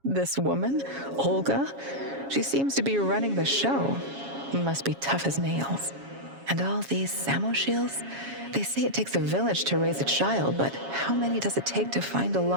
This woman, Olga, she seems to be running the show. Must be tough as nails. And all these Samoshiels, they say it takes a village to raise a child, but how many does it take to find a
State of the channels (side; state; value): left; late; 7.3 ms